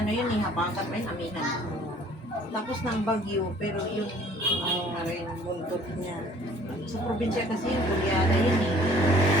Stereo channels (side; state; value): both; normal; correlation 0.54